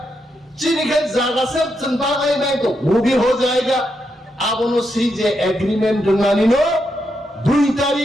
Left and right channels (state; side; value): normal; both; correlation 0.82